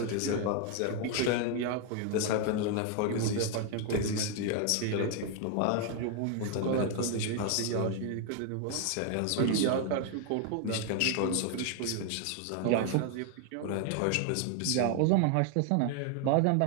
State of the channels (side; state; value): both; different; correlation 0.01